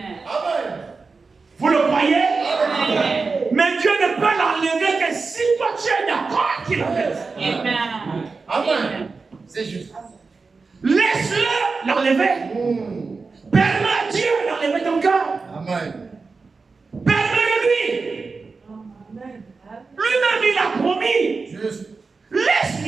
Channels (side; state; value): left; quieter; 4.3 dB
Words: Vous le croyez? Mais Dieu ne peut l'enlever que si toi tu es d'accord qu'il l'enlève. Amen. C'est juste. Laisse-le l'enlever. Permets à Dieu d'enlever ton cœur. Amen. Permets-le lui. Lui-même il a promis. Juste. Laisse